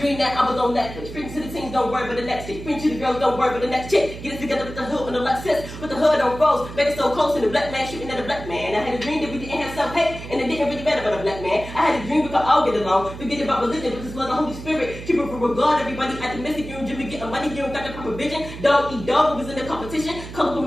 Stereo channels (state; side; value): noise; right; hum, 12 dB below the sound